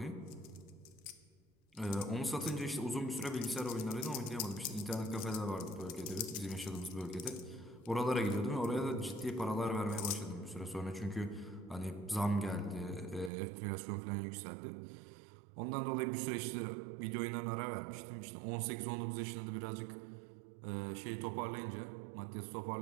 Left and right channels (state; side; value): drops out; left; at 13.3 s